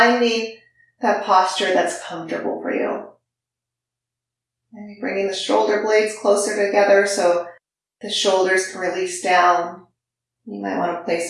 that posture that's comfortable for you. Maybe bringing the shoulder blades closer together so the shoulders can release down. You might want to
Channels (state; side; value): identical; both; correlation 1.00